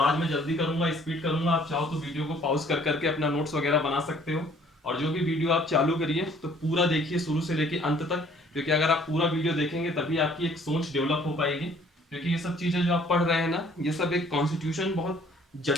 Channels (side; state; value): both; normal; correlation 0.58